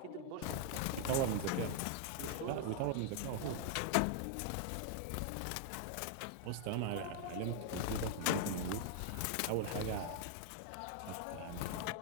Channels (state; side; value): different; both; correlation 0.00